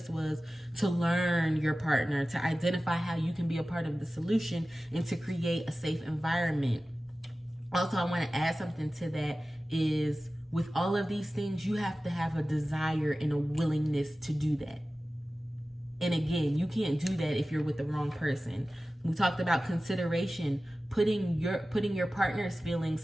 was to learn your partner, to identify how you can be a part of the solution, and to create a safe environment. Also, I want to add something to that is, with all of these things, you have to have a desire and a willingness to do that. And again, you can't do that if you're with the wrong person. We talked about consideration, putting your partner's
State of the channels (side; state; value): both; normal; correlation 0.96